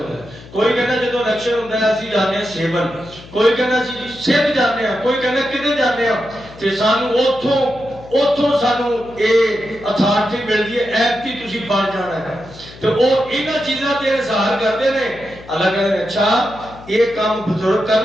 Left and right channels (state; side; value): noise; left; hum, 19 dB below the sound